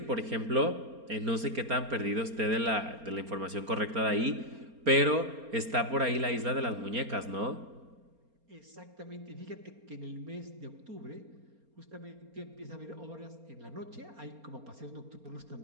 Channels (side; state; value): left; late; 4.3 ms